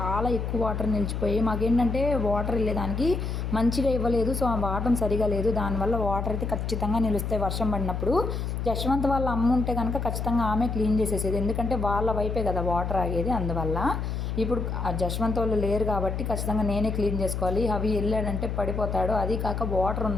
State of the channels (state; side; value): noise; left; hum, 3 dB below the sound